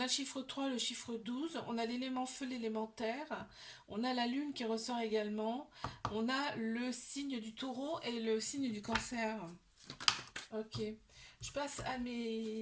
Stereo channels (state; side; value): identical; both; correlation 1.00